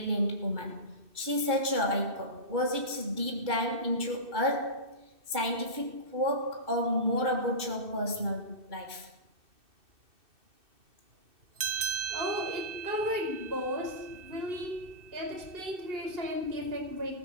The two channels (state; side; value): late; left; 2.6 ms